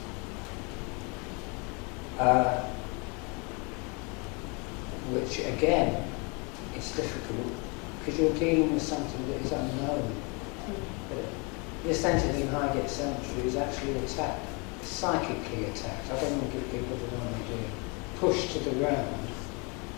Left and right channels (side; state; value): right; quieter; 31.4 dB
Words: Which again is difficult because you're dealing with something that is unknown. But this entity in Highgate Cemetery is actually attacked, psychically attacked. I don't want to give people the wrong idea. Pushed to the ground.